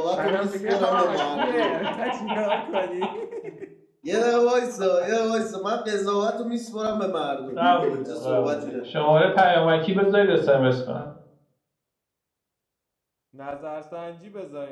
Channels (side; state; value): both; identical; correlation 1.00